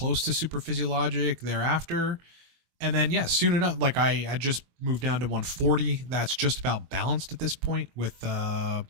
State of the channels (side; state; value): left; late; 23 ms